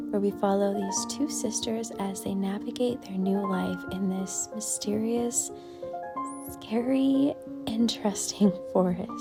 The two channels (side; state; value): both; identical; correlation 1.00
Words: where we follow these two sisters as they navigate their new life in this mysterious, scary, interesting